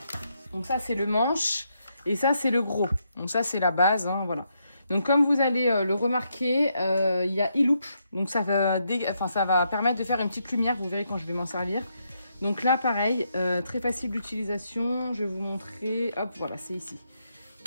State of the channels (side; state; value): both; inverted; correlation -0.79